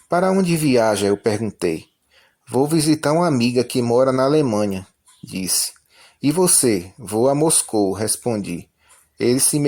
Para onde viaja? Eu perguntei. Vou visitar uma amiga que mora na Alemanha, disse. E você? Vou a Moscou, respondi. Ele se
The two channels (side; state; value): both; identical; correlation 1.00